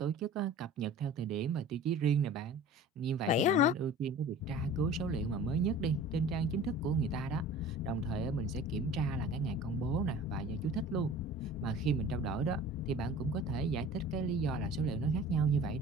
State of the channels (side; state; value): both; normal; correlation 0.42